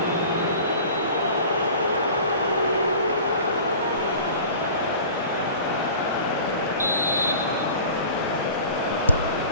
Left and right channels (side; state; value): both; inverted; correlation -0.40